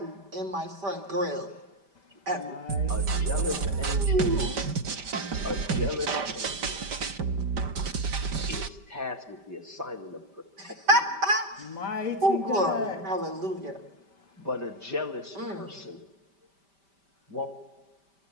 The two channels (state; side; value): late; left; 5.1 ms